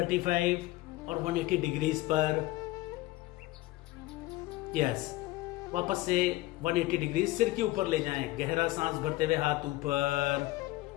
और 180 डिग्रीज पर। यस, वापस से 180 डिग्री सिर के ऊपर ले जाएं। गहरा सांस भरते हुए हाथ ऊपर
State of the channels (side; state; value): right; quieter; 18.4 dB